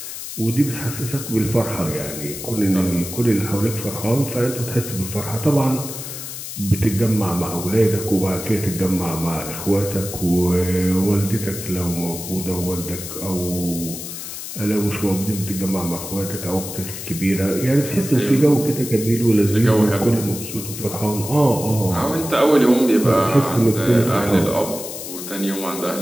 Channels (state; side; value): noise; left; hiss, 9 dB below the sound